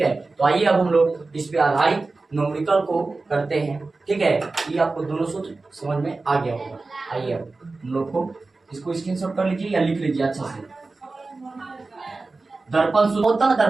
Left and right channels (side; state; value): left; quieter; 3.6 dB